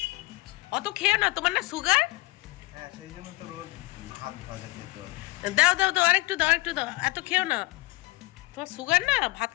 অত খেও না, তোমার না সুগার? হ্যাঁ সেই জন্য তো রোজ ভাত ভাজা খেতে হয়। দাও দাও দাও আরেকটু দাও, একটু দাও, এত খেও না। তোমার সুগার না, ভাত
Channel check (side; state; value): right; quieter; 22.2 dB